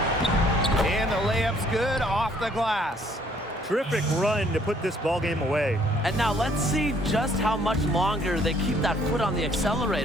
And the layup's good off the glass. Terrific run to put this ball game away. And now let's see just how much longer they keep that foot on the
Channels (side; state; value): both; normal; correlation 0.63